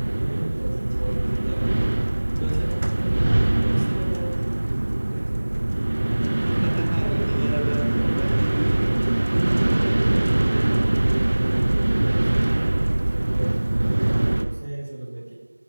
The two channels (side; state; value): both; inverted; correlation -1.00